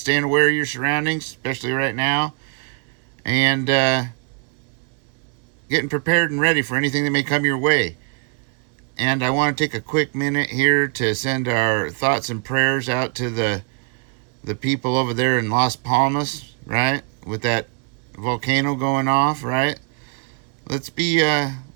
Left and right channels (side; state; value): left; quieter; 37.1 dB